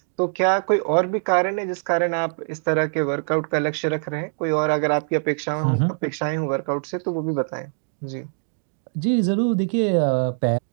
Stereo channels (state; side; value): silent; left; digital silence